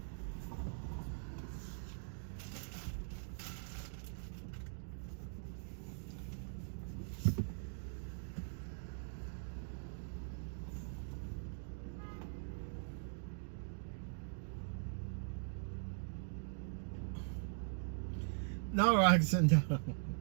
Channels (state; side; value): silent; left; digital silence